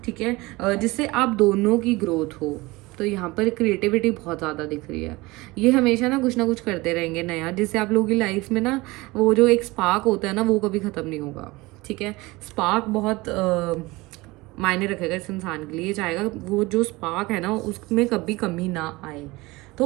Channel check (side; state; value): left; quieter; 21.9 dB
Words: ठीक है, जिससे आप दोनों की ग्रोथ हो। तो यहाँ पर क्रिएटिविटी बहुत ज़्यादा दिख रही है। ये हमेशा ना कुछ करते रहेंगे नया, जिससे आप लोगों की लाइफ में ना वो जो एक स्पार्क होता है ना, वो कभी ख़त्म नहीं होगा, ठीक है। स्पार्क बहुत मायने रखेगा इस इंसान के लिए, चाहेगा वो जो स्पार्क है ना उसमें कभी कमी ना आए।